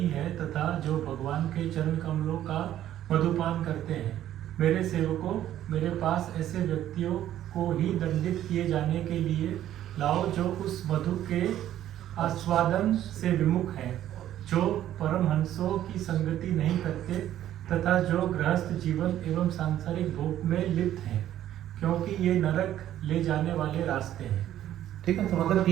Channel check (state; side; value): quieter; left; 12.1 dB